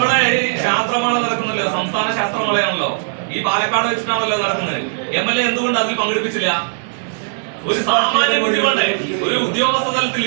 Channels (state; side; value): silent; left; digital silence